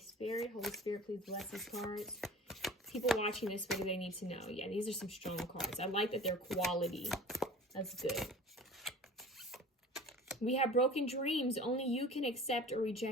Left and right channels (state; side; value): normal; both; correlation 0.41